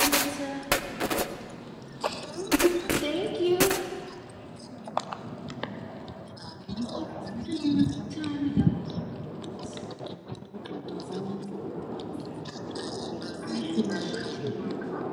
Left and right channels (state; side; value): identical; both; correlation 1.00